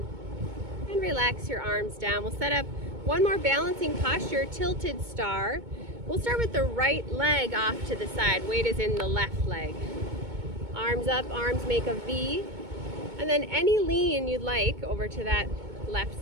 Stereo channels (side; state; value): left; late; 2.2 ms